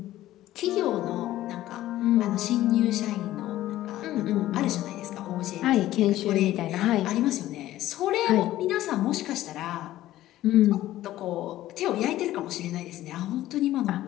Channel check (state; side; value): quieter; right; 14.6 dB